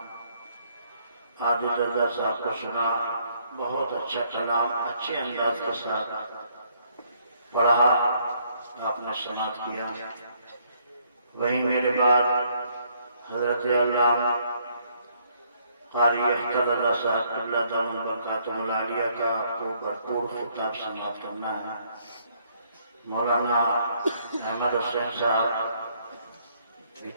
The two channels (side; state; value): both; inverted; correlation -0.68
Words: عادل رضا صاحب کو سنا، بہت اچھا کلام اچھے انداز کے ساتھ پڑھا، آپ نے سماعت کیا۔ وہیں میرے بعد حضرت علامہ قاری اختر رضا صاحب اللہ دامن برکاتہ العالیہ کا آپ کو بھرپور خطاب سماعت کرنا ہے۔ مولانا احمد حسین صاحب بھی